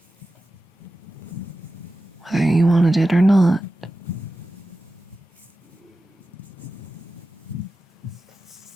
whether you wanted it or not.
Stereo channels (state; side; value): normal; both; correlation 0.94